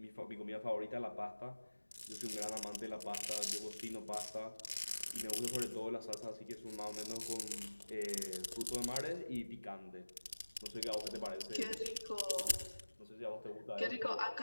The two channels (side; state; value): both; inverted; correlation -1.00